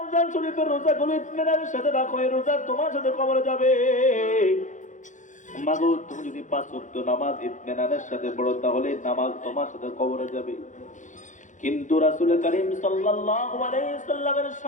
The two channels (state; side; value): late; right; 0.36 ms